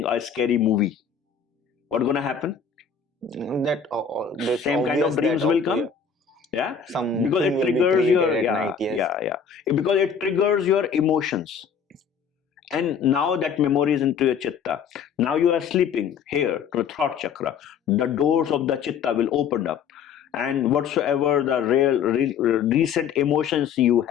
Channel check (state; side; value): quieter; right; 6.8 dB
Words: a scary movie, what's going to happen? That same kind of dreams will come. Because it triggers your because it triggers your emotions. And now that memory is into your chitta. Now you are sleeping here to the throat chakra. The doors of the chitta will open up. And whatsoever the recent emotions you